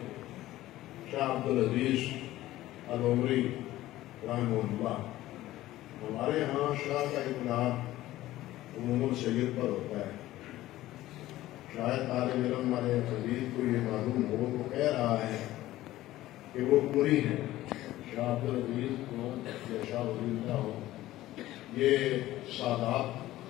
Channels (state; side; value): quieter; right; 15.6 dB